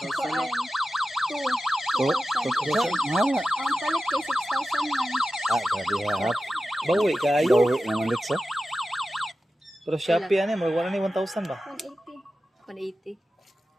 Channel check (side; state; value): both; normal; correlation 0.93